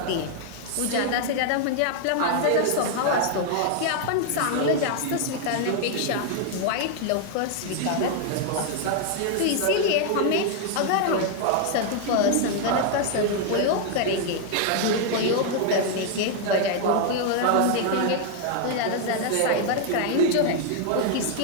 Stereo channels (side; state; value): both; different; correlation 0.00